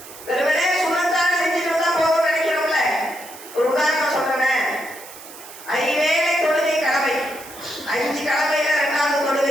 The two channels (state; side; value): noise; right; hiss, 17 dB below the sound